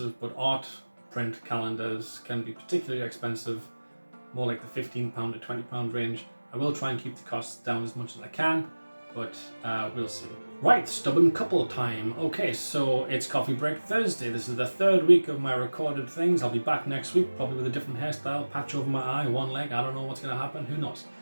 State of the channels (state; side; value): inverted; both; correlation -1.00